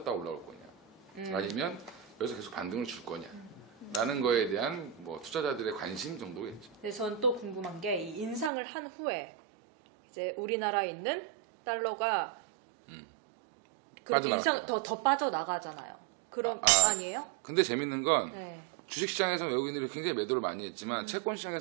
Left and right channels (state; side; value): drops out; left; at 8.5 s